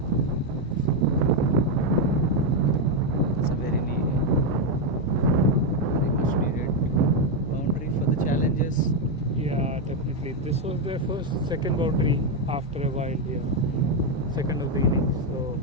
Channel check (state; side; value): normal; both; correlation 0.04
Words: It's a very much needed boundary for the challengers. Yeah, definitely. This was their second boundary after a while here. Second of the innings. So,